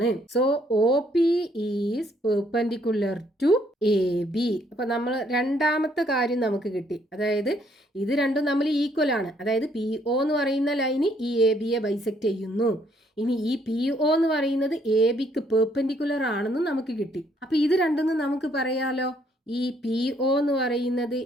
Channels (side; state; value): both; normal; correlation 0.68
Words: So O P is perpendicular to A B. അപ്പൊ നമ്മൾ രണ്ടാമത്തെ കാര്യം നമുക്ക് കിട്ടി. അതായത് ഇത് രണ്ടും നമ്മൾ ഈക്വൽ ആണ്. അതായത് പി ഒ എന്ന് പറയുന്ന ലൈന് ഈ എ ബിയെ ബൈസെക്ട് ചെയ്യുന്നു. ഇനി ഈ പി ഒ എന്ന് പറയുന്നത് എ ബിക്ക് പെർപെൻഡിക്കുലർ ആണെന്ന് നമുക്ക് കിട്ടി. അപ്പൊ ഇത് രണ്ടെന്ന് നമുക്ക് പറയാലോ. ഈ പി ഒ എന്ന് പറയുന്നത്